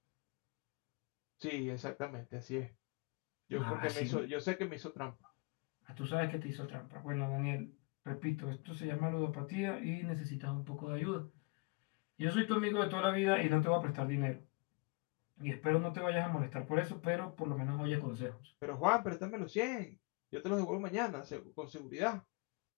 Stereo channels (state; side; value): quieter; right; 30.0 dB